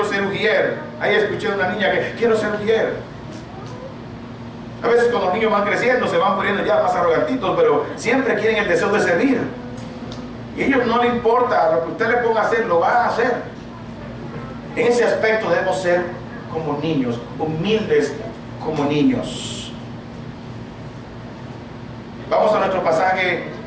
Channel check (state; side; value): identical; both; correlation 1.00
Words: ser ujier. Ahí escuché a una niña que quiero ser ujier. A veces cuando los niños van creciendo se van poniendo ya más arrogantitos, pero siempre quieren el deseo de servir. Y a ellos no les importa, lo que usted le ponga a hacer, lo van a hacer. En ese aspecto debemos ser como niños, humildes como niños. Vamos a nuestro pasaje